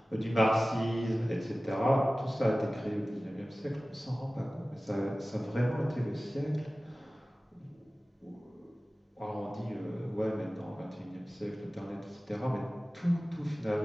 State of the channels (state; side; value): normal; both; correlation 0.97